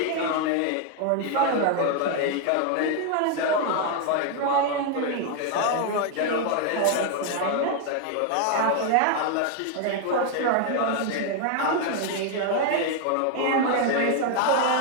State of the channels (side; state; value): both; different; correlation 0.01